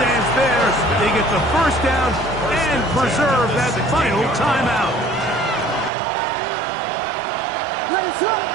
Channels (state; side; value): drops out; left; at 5.9 s